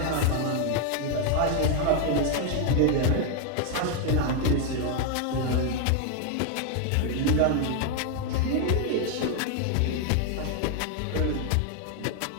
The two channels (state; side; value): different; both; correlation 0.01